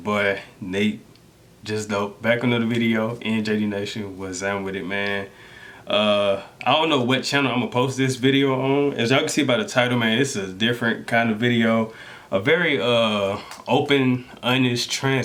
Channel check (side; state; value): both; identical; correlation 1.00